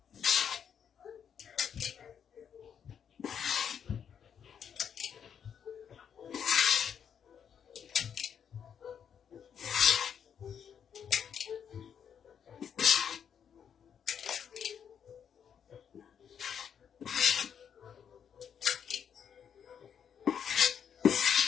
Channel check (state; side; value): quieter; right; 8.0 dB